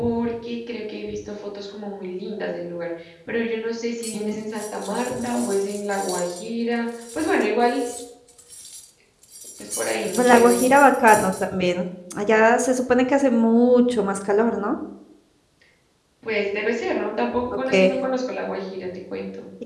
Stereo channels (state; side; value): identical; both; correlation 1.00